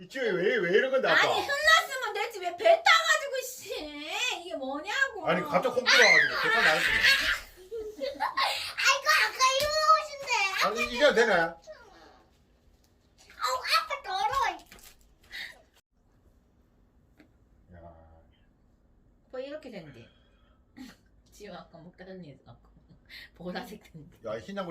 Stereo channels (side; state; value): both; identical; correlation 1.00